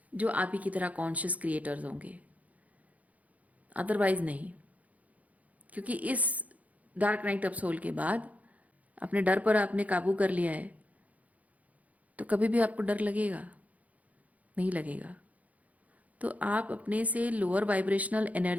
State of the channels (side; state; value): left; late; 0.072 ms